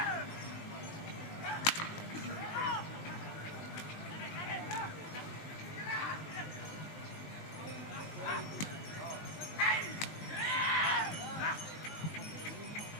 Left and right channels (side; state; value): right; late; 20 ms